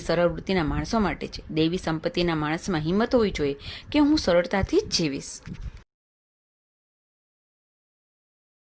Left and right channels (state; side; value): identical; both; correlation 1.00